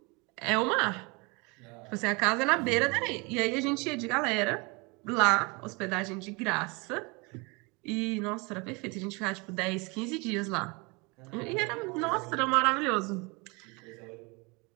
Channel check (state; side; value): quieter; left; 28.4 dB